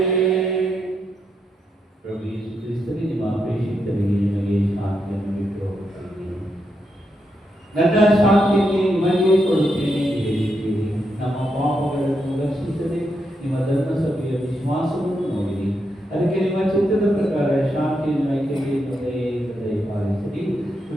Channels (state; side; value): normal; both; correlation 0.82